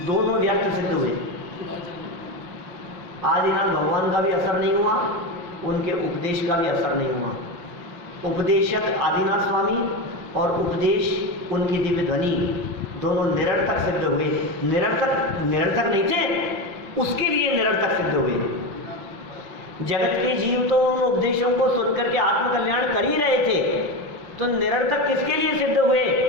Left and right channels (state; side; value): late; left; 5.7 ms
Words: दोनों व्यर्थ सिद्ध हुए। आदिनाथ भगवान का भी असर नहीं हुआ, उनके उपदेश का भी असर नहीं हुआ। उपदेशक आदिनाथ स्वामी और उपदेश उनकी दिव्य ध्वनि दोनों निरर्थक सिद्ध हुए। निरर्थक नहीं थे, उसके लिए निरर्थक सिद्ध हुए। जगत के जीव तो उन उपदेशों को सुनकर के आत्मकल्याण कर ही रहे थे, तो निरर्थक किसके लिए सिद्ध हुए?